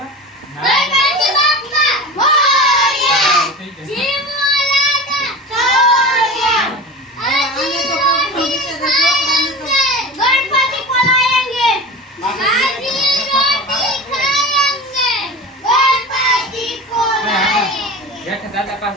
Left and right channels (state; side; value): normal; both; correlation 0.31